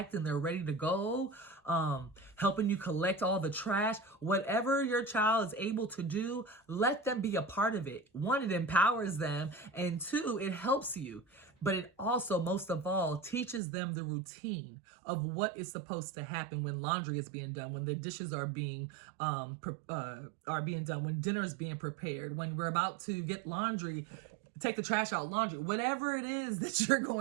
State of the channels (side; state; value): left; drops out; at 13.6 s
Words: and they're ready to go. Helping you collect all the trash. Whatever your child is able to do, let them be a part of it. 1, it empowers them, and 2, it helps you. But it also, most of all, teaches them the routine of what is supposed to happen when laundry is being done, when the dishes are being done, when dinner is being prepared, when we're about to get laundry, take the trash out, laundry, whatever it is that you're